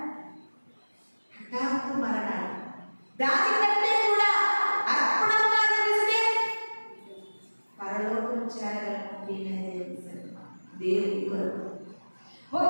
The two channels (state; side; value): inverted; both; correlation -1.00